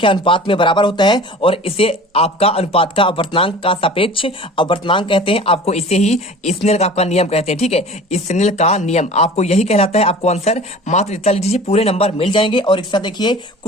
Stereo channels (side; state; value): both; normal; correlation 0.42